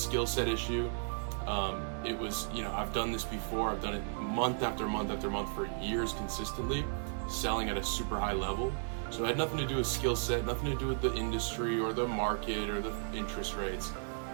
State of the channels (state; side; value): silent; left; 55 dB below the other